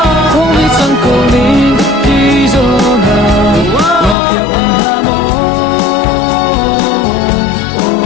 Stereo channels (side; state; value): right; drops out; at 4.2 s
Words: không biết rằng cô đi đi rồi na ngọc ya un ha mo